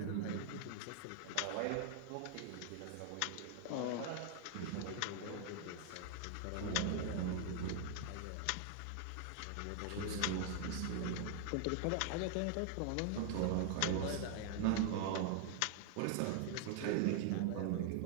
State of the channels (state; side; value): different; both; correlation 0.00